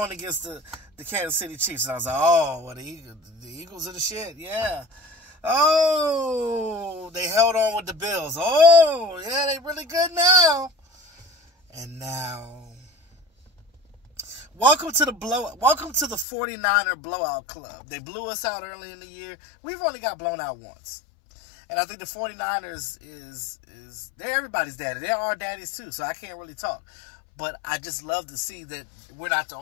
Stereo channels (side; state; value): right; drops out; at 16.2 s